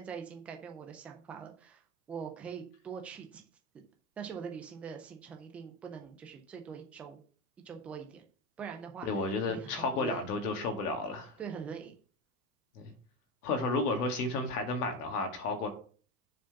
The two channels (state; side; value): normal; both; correlation 0.18